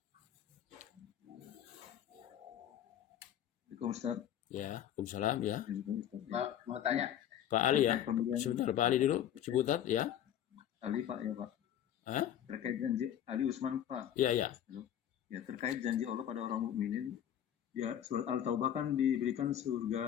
Assalamualaikum Ustaz. Ya, Waalaikumsalam ya. Pak, mau tanya. Pak Ali ya. Sebentar, Pak Ali dulu. Cibutat ya. Ali Pak ya Pak. Hah? Terkait janji Ali Usman Pak. Iya, ya. Ya, terkait janji Allah pada orang mukminin, ya surat Al-Taubah kan diberikan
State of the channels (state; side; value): quieter; right; 10.5 dB